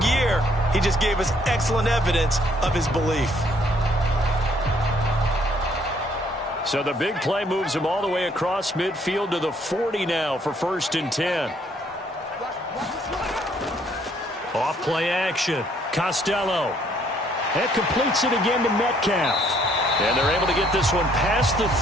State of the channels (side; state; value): both; normal; correlation 0.66